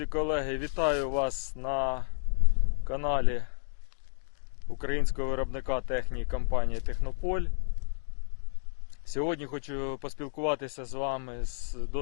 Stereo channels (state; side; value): silent; right; digital silence